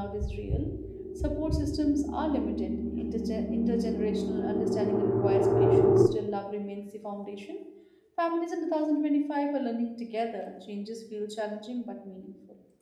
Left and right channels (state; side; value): identical; both; correlation 1.00